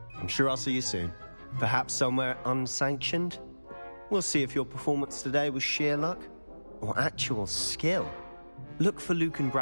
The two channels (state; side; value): inverted; both; correlation -1.00